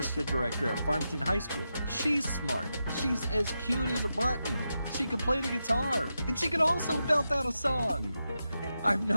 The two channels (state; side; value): inverted; both; correlation -0.88